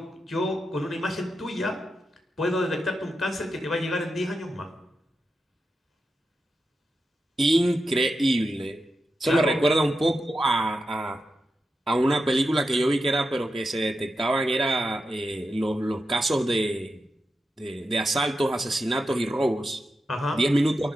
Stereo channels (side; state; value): both; normal; correlation 0.88